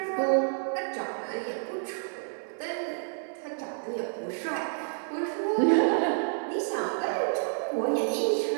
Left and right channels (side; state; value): left; silent; 58 dB below the other